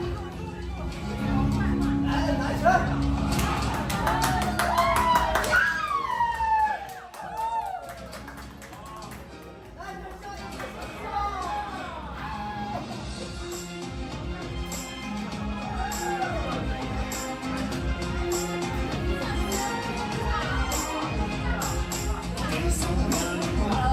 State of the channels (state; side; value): identical; both; correlation 1.00